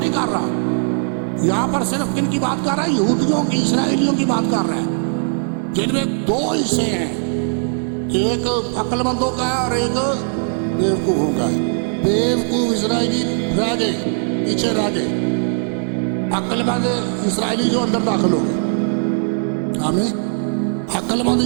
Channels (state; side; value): silent; left; 60 dB below the other